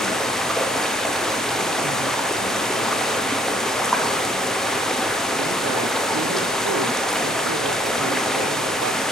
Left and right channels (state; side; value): normal; both; correlation 0.64